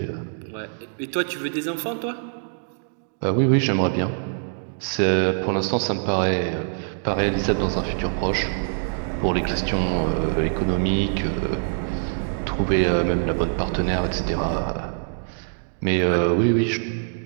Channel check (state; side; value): silent; left; digital silence